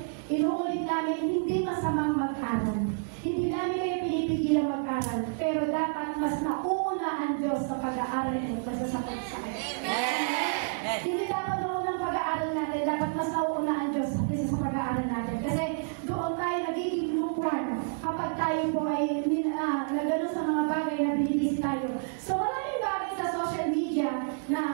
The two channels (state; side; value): silent; left; digital silence